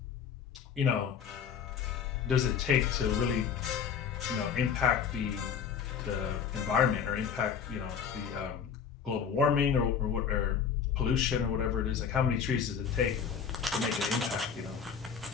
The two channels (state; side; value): quieter; right; 7.1 dB